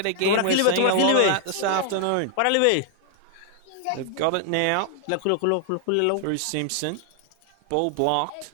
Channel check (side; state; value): both; different; correlation 0.00